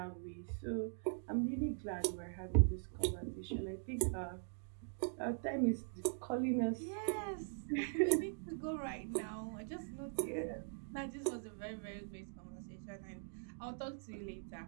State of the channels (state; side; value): silent; left; digital silence